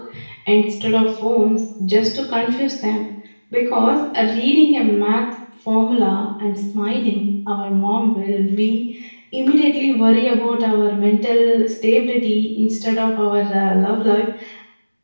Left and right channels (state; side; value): inverted; both; correlation -1.00